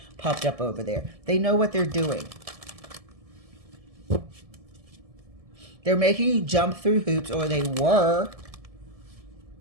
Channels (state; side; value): late; left; 1.7 ms